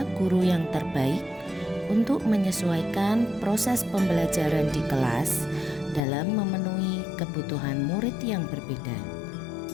guru yang terbaik untuk menyesuaikan proses pembelajaran di kelas dalam memenuhi kebutuhan murid yang berbeda.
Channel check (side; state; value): right; drops out; at 6.0 s